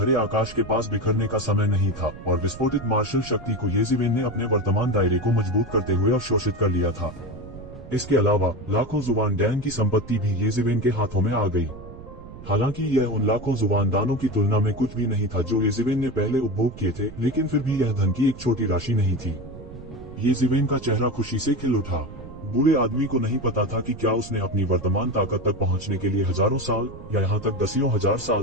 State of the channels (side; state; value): right; noise; rumble, 15 dB below the sound